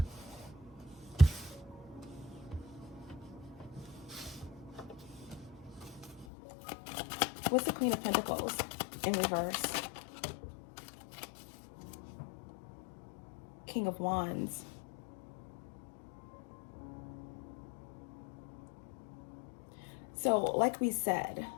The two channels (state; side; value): drops out; right; at 6.2 s